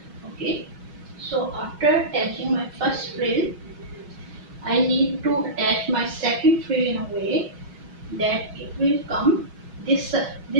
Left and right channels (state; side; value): late; left; 6.2 ms